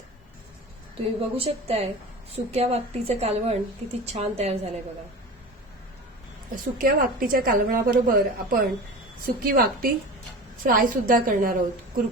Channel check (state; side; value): normal; both; correlation 0.33